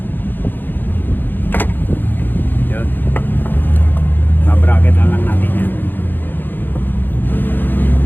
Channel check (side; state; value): right; late; 0.092 ms